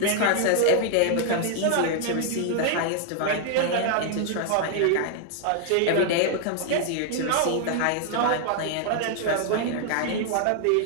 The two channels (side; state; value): both; different; correlation 0.00